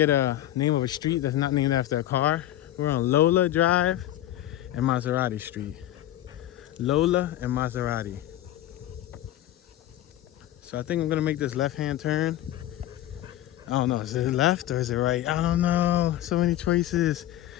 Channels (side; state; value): right; quieter; 13.3 dB